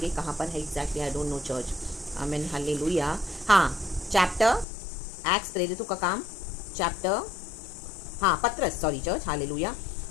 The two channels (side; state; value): right; drops out; at 4.7 s